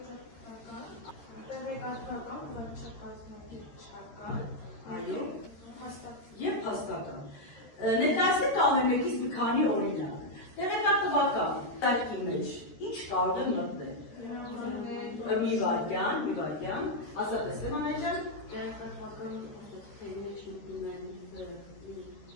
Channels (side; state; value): right; late; 13 ms